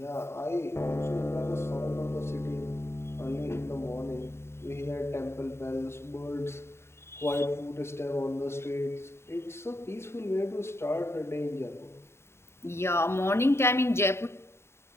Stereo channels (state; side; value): late; right; 0.12 ms